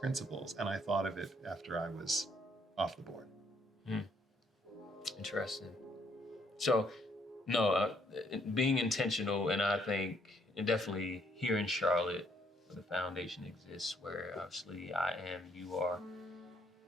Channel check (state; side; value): normal; both; correlation 0.69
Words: And I thought of it after I was off the board. Interesting. So, no, being intentional, and I think, and definitely here in Charlotte, where the foundation exists, where obviously you are,